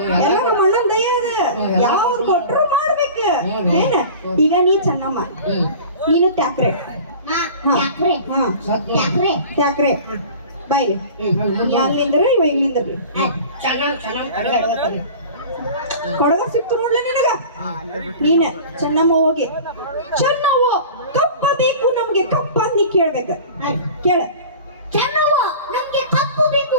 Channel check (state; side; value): inverted; both; correlation -0.39